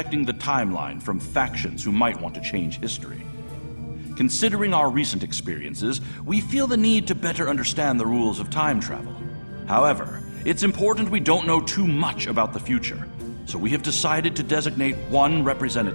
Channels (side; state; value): both; inverted; correlation -1.00